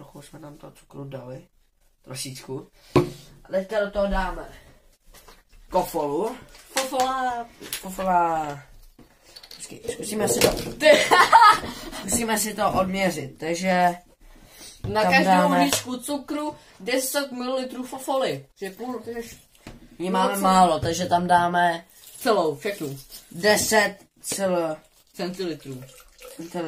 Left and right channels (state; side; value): identical; both; correlation 1.00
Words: jsme tam toho cukru dali. Trošičku. A teďka do toho dáme kofolu. Fofola. Počkej, zkusíme si to odměřit, takže na každou hříčku cukru 10 ml fofoly. My máme málo, takže tam dáme celou, všechnu. 10 centilitrů.